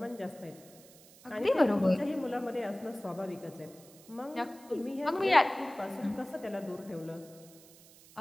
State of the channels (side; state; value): right; noise; hiss, 23 dB below the sound